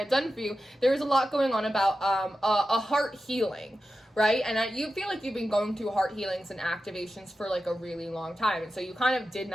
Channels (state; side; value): normal; both; correlation 0.92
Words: done for you, there was a lot going on about a heart healing, right? And you feel like you've been going through heart healings and activations for like a really long time. And so you kind of did